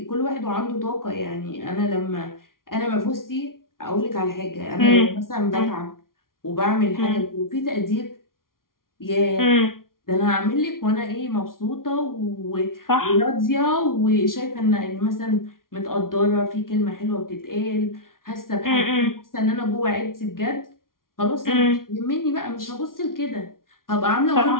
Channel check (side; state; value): right; late; 0.92 ms